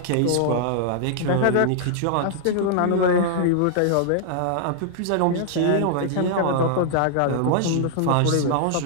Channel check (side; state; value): both; different; correlation -0.01